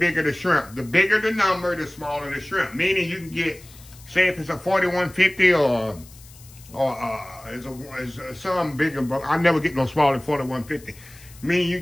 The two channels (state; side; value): noise; left; hiss, 22 dB below the sound